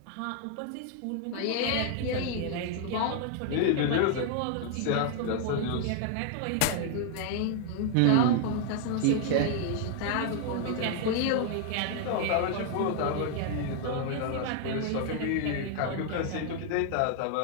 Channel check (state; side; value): different; both; correlation 0.00